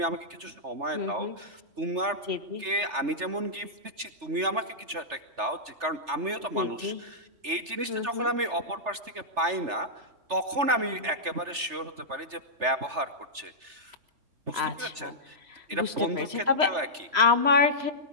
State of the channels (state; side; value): late; left; 3.3 ms